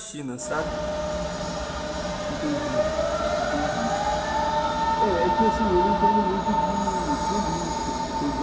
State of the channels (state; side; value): identical; both; correlation 1.00